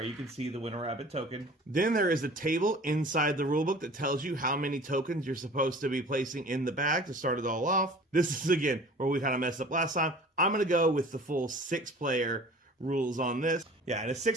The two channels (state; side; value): normal; both; correlation 0.44